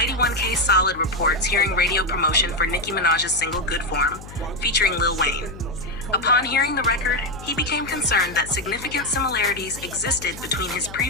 1K Solid reports hearing radio promotion for Nicki Minaj's single Good Form, featuring Lil Wayne. Upon hearing the record, he became concerned that significant similarities existed between his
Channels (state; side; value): noise; left; hum, 15 dB below the sound